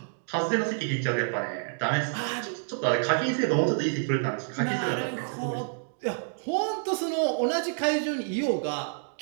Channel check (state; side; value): silent; left; digital silence